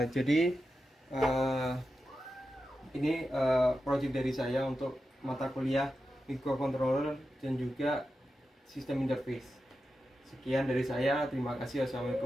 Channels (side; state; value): both; normal; correlation 0.90